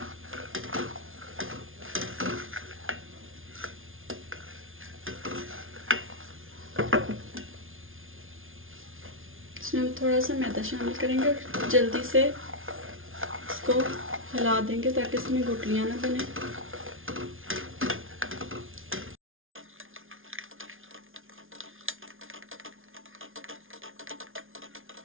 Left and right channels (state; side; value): late; left; 0.59 ms